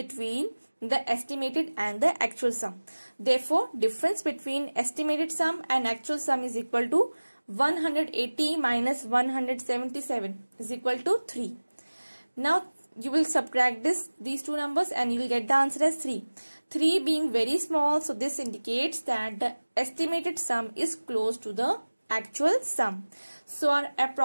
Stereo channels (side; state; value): both; inverted; correlation -1.00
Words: the estimated and the actual sum. Therefore, difference between estimated sum and actual sum is equal to 180 minus 177 is equal to 3. Now you will subtract these two numbers and you will get the answer as 3. 3 being very small, so this indicates that the estimated sum is close to the actual sum. So our